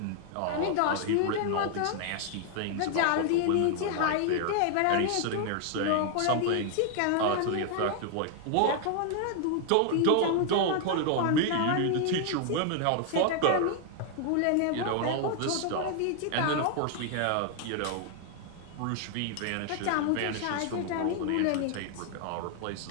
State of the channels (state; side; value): different; both; correlation 0.00